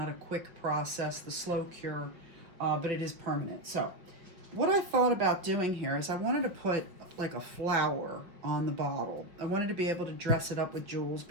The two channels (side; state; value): left; late; 5.3 ms